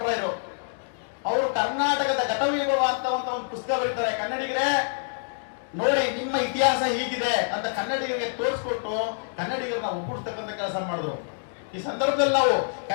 ಅವರು ಕರ್ನಾಟಕದ ಘಟವೈಭವ ಅಂತ ಒಂದು ಪುಸ್ತಕ ಬರೀತಾರೆ. ಕನ್ನಡಿಗರೇ ನೋಡಿ, ನಿಮ್ಮ ಇತಿಹಾಸ ಹೀಗಿದೆ ಅಂತ ಕನ್ನಡಿಗರಿಗೆ ತೋರಿಸ್ಕೊಟ್ಟು ಕನ್ನಡಿಗರನ್ನ ಒಗ್ಗೂಡಿಸ್ತಕ್ಕಂಥ ಕೆಲಸ ಮಾಡಿದ್ರು. ಈ ಸಂದರ್ಭದಲ್ಲಿ ನಾವು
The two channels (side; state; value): right; silent; digital silence